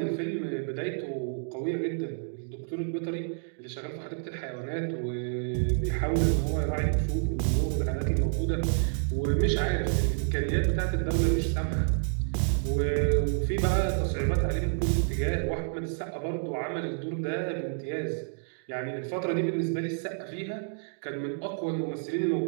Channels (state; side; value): silent; left; digital silence